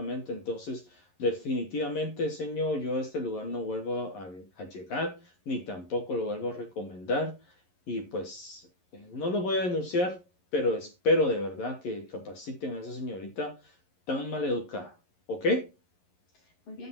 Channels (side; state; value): right; late; 11 ms